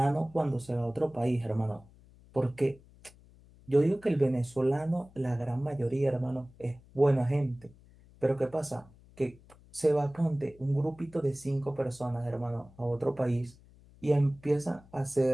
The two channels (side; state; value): left; noise; hum, 25 dB below the sound